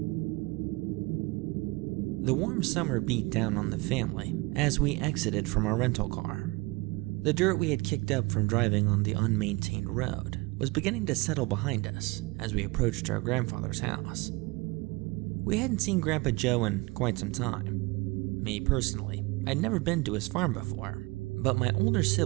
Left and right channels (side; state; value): left; quieter; 24.5 dB